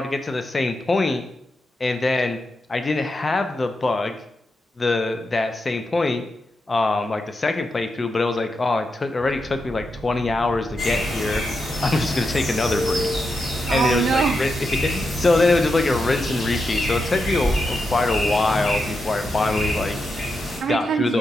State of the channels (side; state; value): both; normal; correlation 0.86